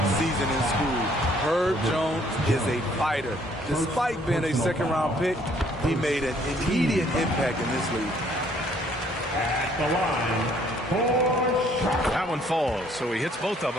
season in school. Herb Jones is a fighter. Despite being a second-round pick, he made an immediate impact in this league. At the line for shot. That one falls, so he hits both of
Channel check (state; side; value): normal; both; correlation 0.63